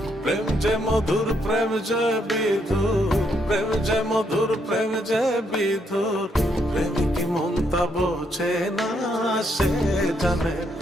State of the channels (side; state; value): both; normal; correlation 0.75